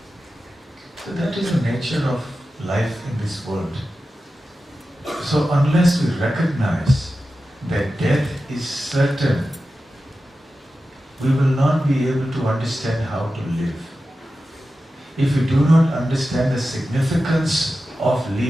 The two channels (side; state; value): both; normal; correlation 0.93